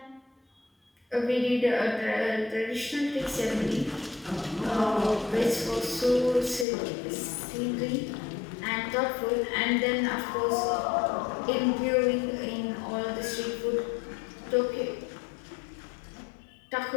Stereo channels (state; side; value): drops out; right; at 6.7 s